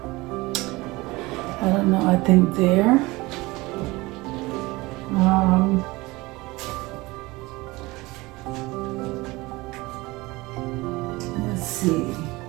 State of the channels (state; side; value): quieter; left; 21.8 dB